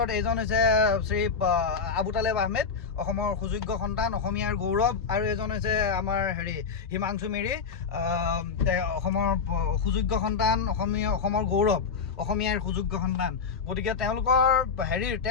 এজন হৈছে শ্ৰী আবু তালেব আহমেদ, অসমৰ সুযোগ্য সন্তান, অসমীয়াৰ গৌৰৱ, আৰু এজন হৈছে আমাৰ হিমাংশু মেৰি, অসমৰ সুযোগ্য সন্তান, অসমৰ গৌৰৱ, অসমীয়াৰ সুযোগ্য সন্তান। গতিকে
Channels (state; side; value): quieter; right; 5.4 dB